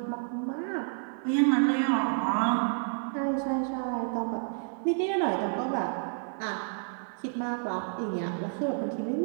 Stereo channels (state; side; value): silent; left; 57 dB below the other